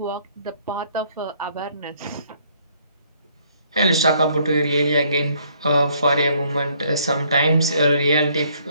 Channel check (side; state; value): both; inverted; correlation -0.65